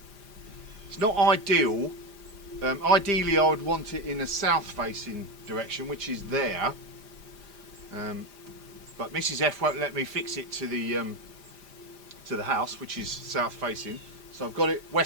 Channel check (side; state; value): left; late; 5.0 ms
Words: It's not ideal. Ideally, I would want it in a south-facing direction, which is there. But Mrs. F won't let me fix it to the house, which is south-facing. So I've got it